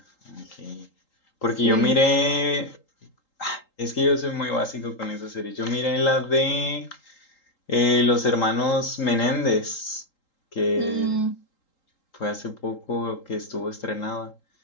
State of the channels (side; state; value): right; late; 3.8 ms